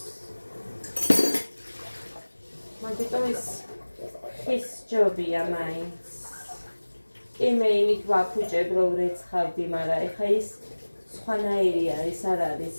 მაგიტო ის ხის ჯობია მაინც. კი მე იმით ვაფუჭებ რომ რეცხავდი, მაგრამ ეხა ის სხვანაირი არის, არ არის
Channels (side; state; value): both; inverted; correlation -1.00